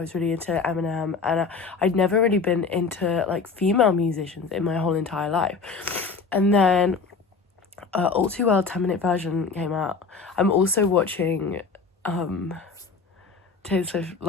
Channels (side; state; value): right; quieter; 4.8 dB